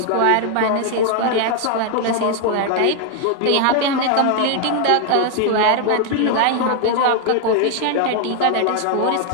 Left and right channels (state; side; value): different; both; correlation 0.00